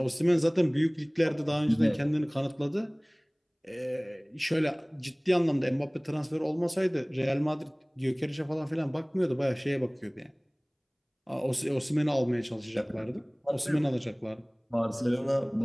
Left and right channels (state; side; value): identical; both; correlation 1.00